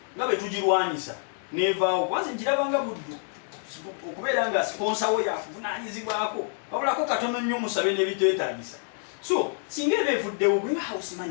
nga bwe tugirwanyisa. Neevaawo. Kwanza nkirabanga buddu. Okubeera nga sponsor we yakuvunaanyizibwako. Wabulako katono nnyo musabe n'ebiteetaagisa. So, singa ebevuddewo gwe house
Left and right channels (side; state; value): right; silent; 60 dB below the other